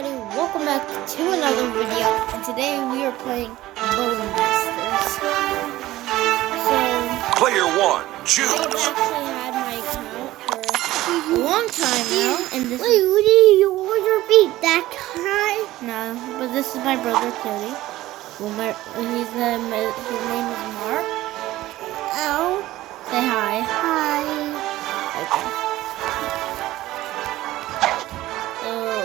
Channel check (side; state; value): left; quieter; 16.2 dB